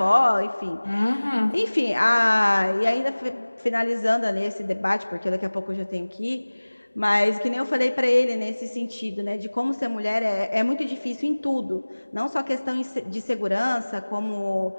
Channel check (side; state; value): both; inverted; correlation -1.00